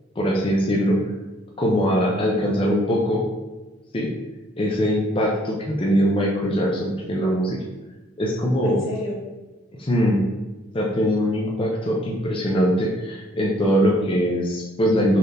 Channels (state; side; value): normal; both; correlation 0.64